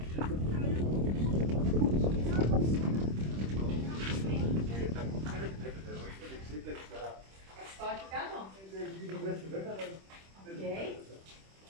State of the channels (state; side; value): late; left; 26 ms